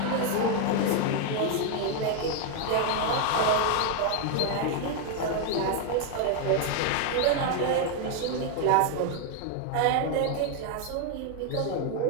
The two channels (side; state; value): both; different; correlation 0.01